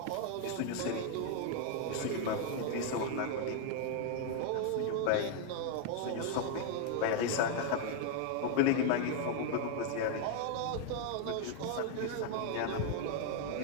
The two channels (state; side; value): different; both; correlation 0.00